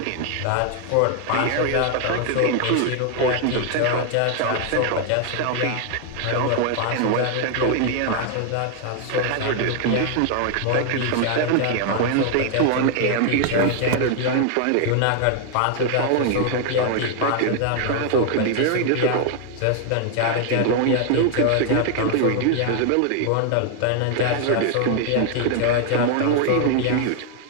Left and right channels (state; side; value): different; both; correlation 0.00